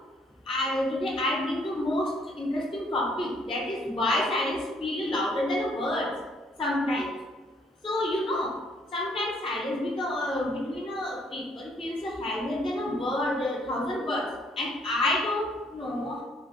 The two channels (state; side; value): normal; both; correlation 0.66